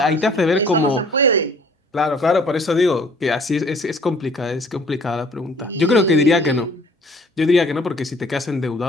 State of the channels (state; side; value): normal; both; correlation 0.54